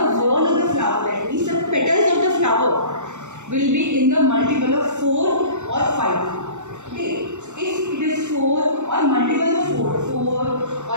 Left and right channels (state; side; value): late; left; 0.84 ms